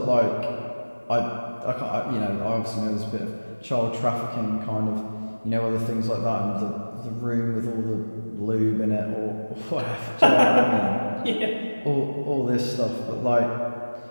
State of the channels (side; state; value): both; inverted; correlation -1.00